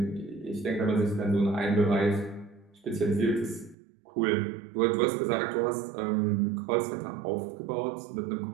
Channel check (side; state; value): left; drops out; at 3.8 s